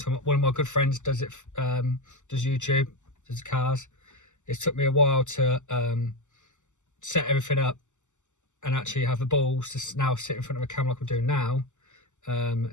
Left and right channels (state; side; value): late; right; 0.84 ms